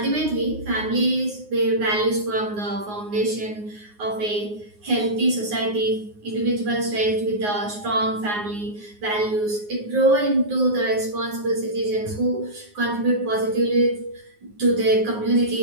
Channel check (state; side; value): late; left; 9.6 ms